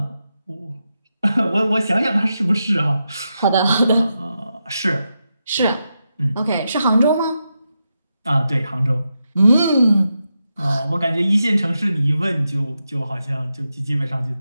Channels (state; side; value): inverted; both; correlation -0.87